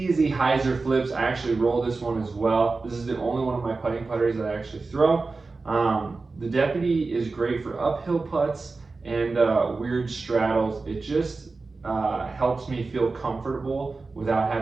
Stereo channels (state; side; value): quieter; left; 3.9 dB